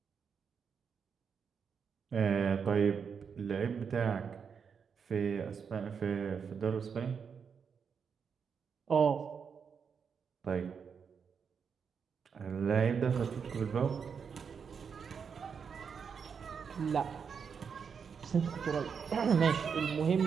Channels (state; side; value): quieter; left; 6.5 dB